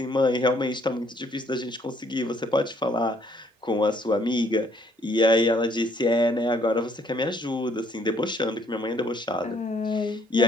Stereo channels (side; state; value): both; normal; correlation 0.65